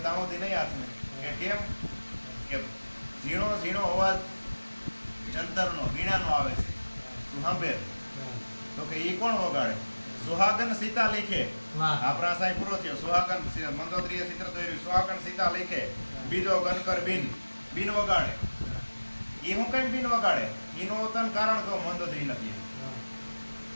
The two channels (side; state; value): both; inverted; correlation -1.00